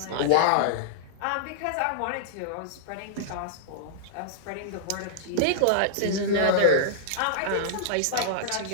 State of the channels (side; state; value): both; different; correlation -0.02